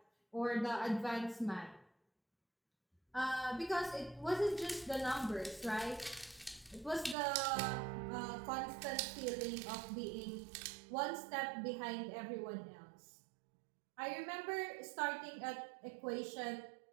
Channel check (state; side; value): drops out; left; at 7.2 s